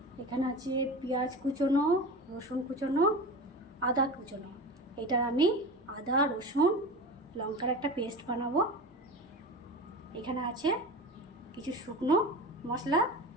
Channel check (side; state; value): both; normal; correlation 0.30